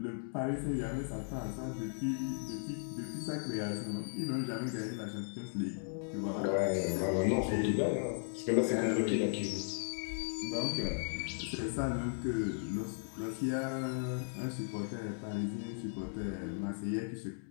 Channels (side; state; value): right; silent; digital silence